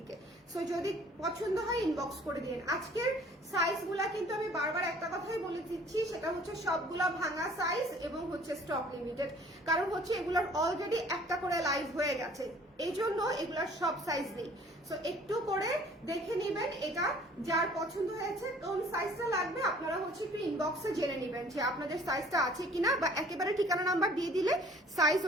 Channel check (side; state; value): both; normal; correlation 0.53